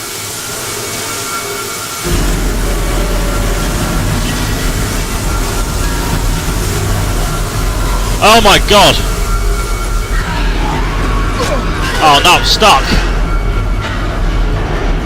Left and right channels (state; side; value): identical; both; correlation 1.00